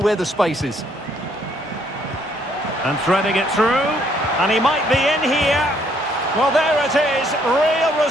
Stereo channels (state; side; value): normal; both; correlation 0.67